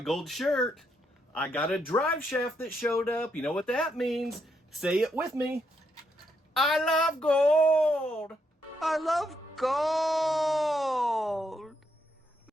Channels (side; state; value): both; normal; correlation 0.78